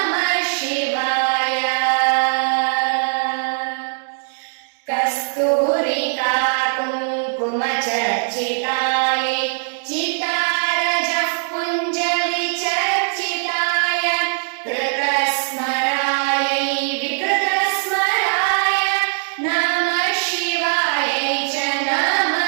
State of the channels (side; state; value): left; silent; digital silence